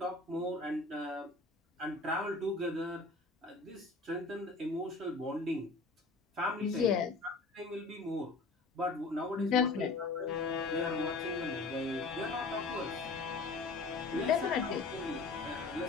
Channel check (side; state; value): right; quieter; 3.7 dB